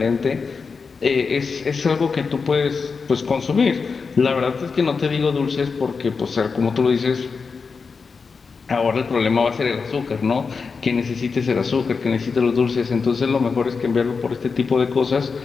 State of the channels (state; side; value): quieter; right; 5.0 dB